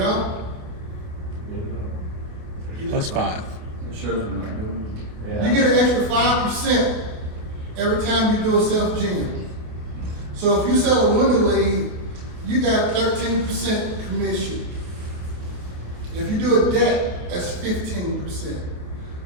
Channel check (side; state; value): left; late; 27 ms